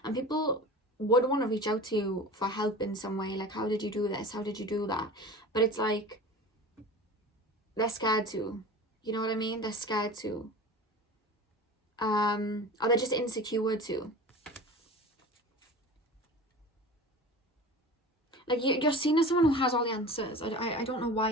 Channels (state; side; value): normal; both; correlation 0.36